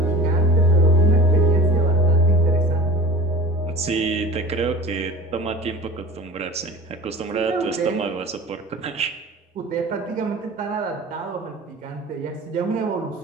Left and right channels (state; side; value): normal; both; correlation 0.39